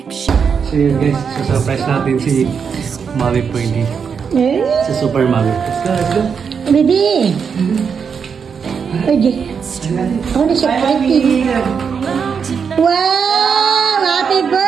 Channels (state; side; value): quieter; left; 6.4 dB